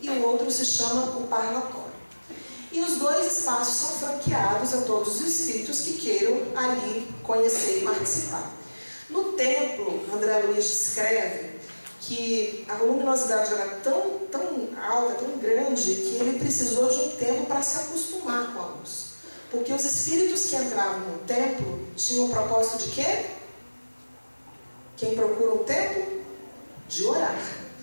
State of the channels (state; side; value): inverted; both; correlation -1.00